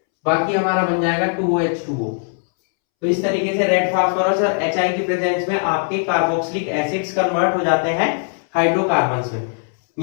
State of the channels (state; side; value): silent; right; 66 dB below the other